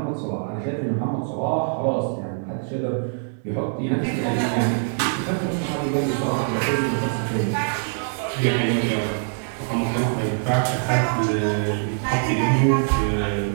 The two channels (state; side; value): silent; left; digital silence